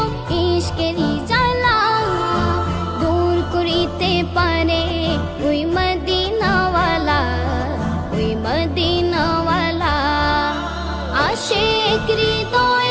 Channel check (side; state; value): both; identical; correlation 1.00